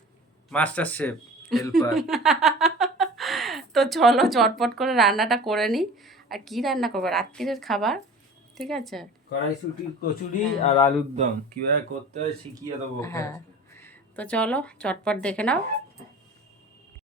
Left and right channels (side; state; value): both; normal; correlation 0.40